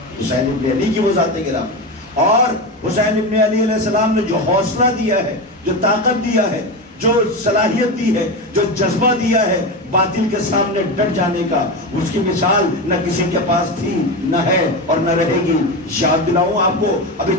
حسین ابن علی کی وہ ذات گرامی۔ اور حسین ابن علی علیہ السلام نے جو حوصلہ دیا ہے، جو طاقت دیا ہے، جو صلاحیت دی ہے، جو جذبہ دیا ہے باطل کے سامنے ڈٹ جانے کا، اس کی مثال نہ کسی کے پاس تھی، نہ ہے اور نہ رہے گی۔ یاد دلاؤں آپ کو ابھی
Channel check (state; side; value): normal; both; correlation 0.19